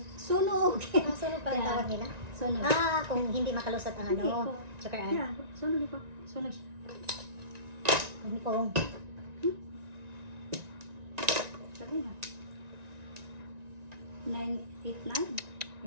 sunog. Ah, sunog pa ang Yeah. tawag nila? Sunog. Ah, kung hindi makalusot ang Hindi po. ano. Joker ay. Yeah, sunog po. Sunog. Hindi po. Sabi na. 989.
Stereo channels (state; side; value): late; left; 1.9 ms